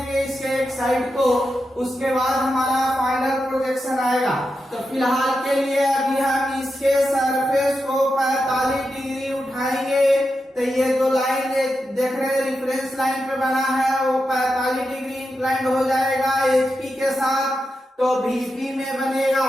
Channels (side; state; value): both; normal; correlation 0.88